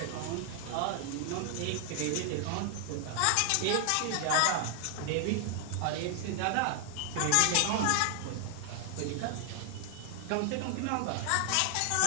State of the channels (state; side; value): different; both; correlation 0.00